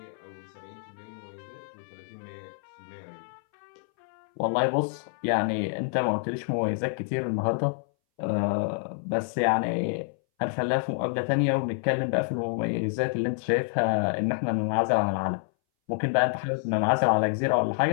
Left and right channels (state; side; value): silent; right; 59 dB below the other